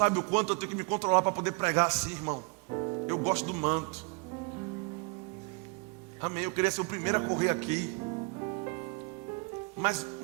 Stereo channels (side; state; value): left; quieter; 30.8 dB